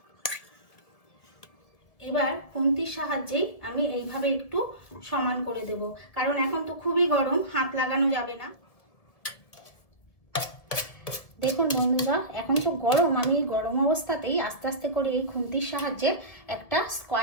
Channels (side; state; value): right; late; 1.7 ms